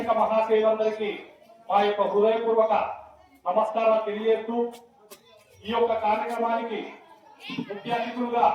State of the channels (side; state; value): both; identical; correlation 1.00